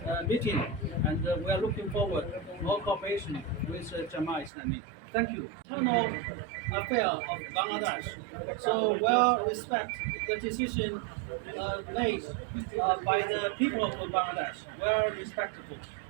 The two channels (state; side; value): drops out; left; at 4.5 s